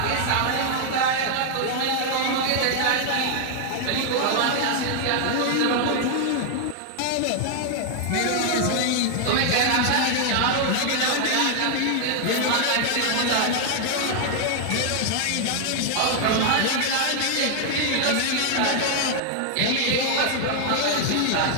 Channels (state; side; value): different; both; correlation 0.00